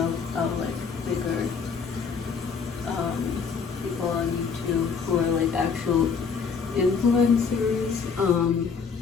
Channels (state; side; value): quieter; right; 5.8 dB